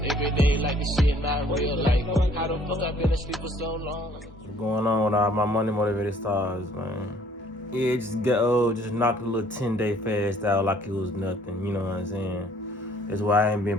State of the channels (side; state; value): both; normal; correlation 0.59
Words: every day like this shit not real. Like, how the fuck I been asleep for so long? What's going on with all my money motivated stars, man? Yeah, just knocked a little 10-day fast out like it was nothing, you know what I'm saying? That's why I ain't been